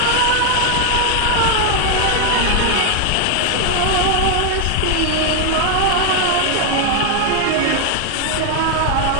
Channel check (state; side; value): different; both; correlation 0.01